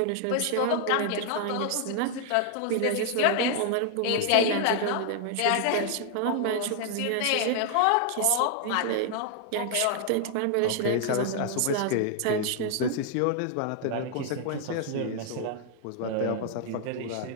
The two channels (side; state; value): both; different; correlation 0.00